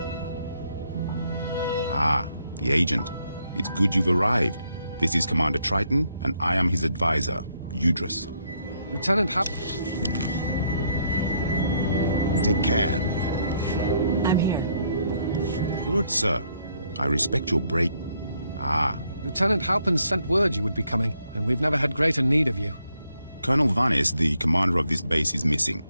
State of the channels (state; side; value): inverted; both; correlation -0.72